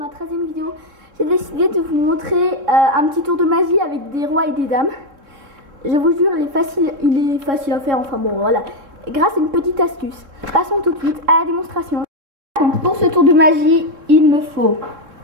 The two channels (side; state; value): left; late; 3.7 ms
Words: 13e vidéo, j'ai décidé de vous montrer un petit tour de magie avec des rois et des dames. Je vous jure, il est facile à faire, enfin bon voilà, grâce à une petite astuce. Passons tout de suite à la démonstration. Donc pour ce tour de magie, il me faut